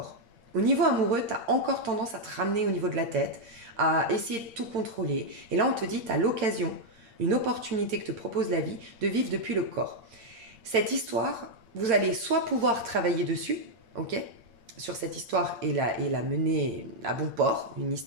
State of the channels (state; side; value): late; left; 8.7 ms